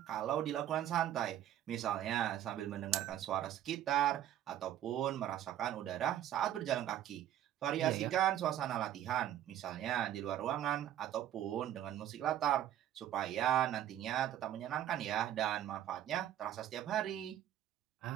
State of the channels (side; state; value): left; quieter; 11.7 dB